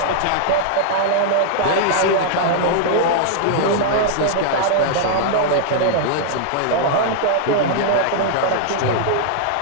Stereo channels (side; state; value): both; different; correlation -0.01